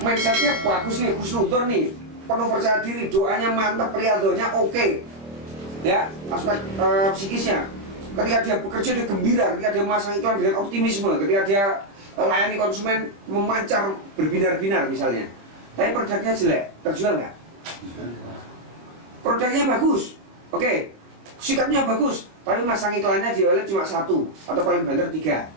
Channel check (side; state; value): left; late; 25 ms